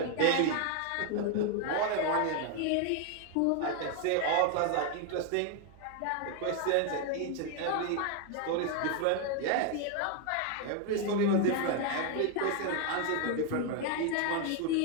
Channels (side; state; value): both; different; correlation 0.01